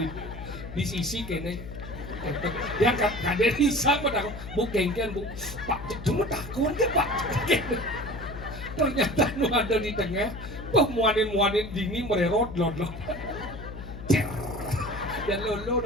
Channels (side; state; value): left; noise; hum, 11 dB below the sound